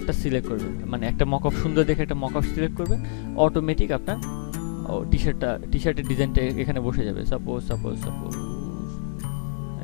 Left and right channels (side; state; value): right; silent; 62 dB below the other